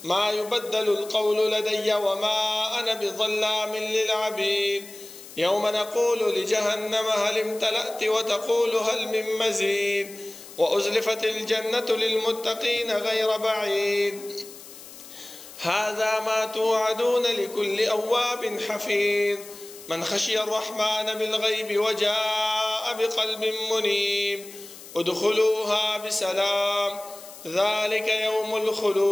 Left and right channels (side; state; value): left; noise; hiss, 17 dB below the sound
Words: ما يبدل القول لدي وما أنا بظلام للعبيد يوم نقول لجهنم هل امتلأت وتقول هل من مزيد وأزلفت الجنة للمتقين غير بعيد هذا ما توعدون لكل أواب حفيظ من خشي الرحمن بالغيب وجاء بقلب منيب ادخلوها بسلام ذلك يوم